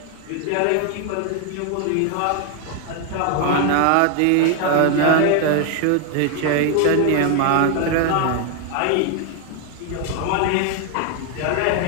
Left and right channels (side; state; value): both; different; correlation 0.01